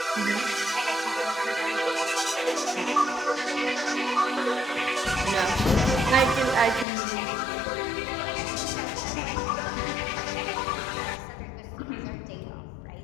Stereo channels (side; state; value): right; drops out; at 6.9 s